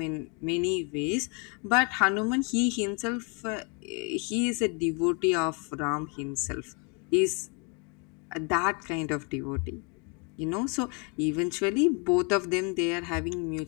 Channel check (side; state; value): right; quieter; 34.7 dB